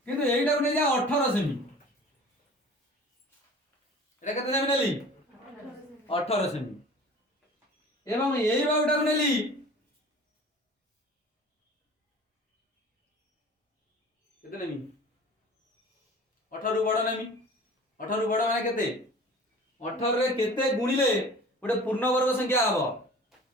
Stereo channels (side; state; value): both; normal; correlation 0.43